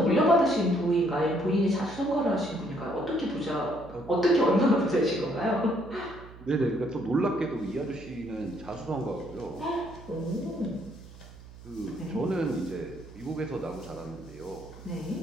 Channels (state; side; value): noise; right; hum, 18 dB below the sound